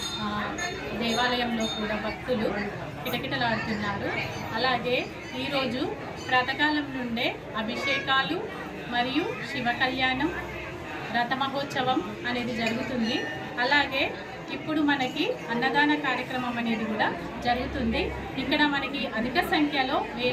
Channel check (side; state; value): both; identical; correlation 1.00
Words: దేవాలయంలో కూడా భక్తులు కిటకిటలాడుతున్నారు. అలాగే ఈరోజు ప్రాతకాలం నుండే అభిషేకాలు మరియు శివ కళ్యాణం, రథ మహోత్సవం అనేది జరుగుతుంది. అలాగే ఇప్పుడు మనకి అన్నదాన కార్యక్రమం అనేది కూడా జరుగుతుంది. ఇక్కడ మనకి అధిక సంఖ్యలో